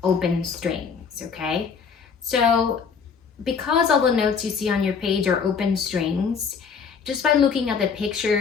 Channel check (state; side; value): quieter; right; 6.0 dB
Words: open strings, okay? So because all the notes you see on your page are open strings, just by looking at the